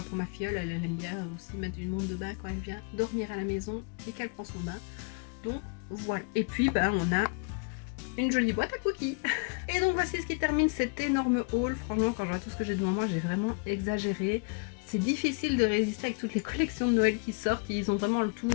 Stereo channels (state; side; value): quieter; right; 33.9 dB